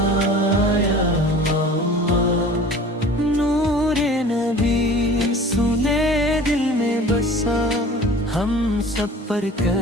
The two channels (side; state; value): both; normal; correlation 0.42